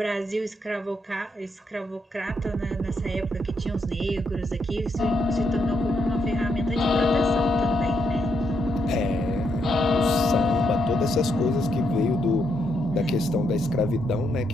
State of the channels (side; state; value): both; normal; correlation 0.78